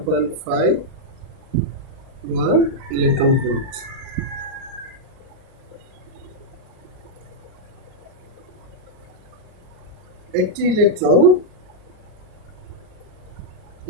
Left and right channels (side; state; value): left; late; 39 ms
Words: ইলেকট্রন ভোল্ট। একটি ইলেকট্রন